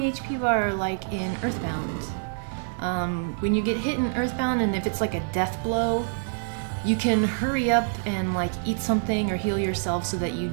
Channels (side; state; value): left; silent; digital silence